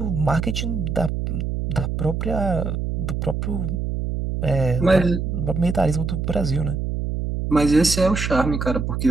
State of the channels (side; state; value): right; noise; hum, 2 dB below the sound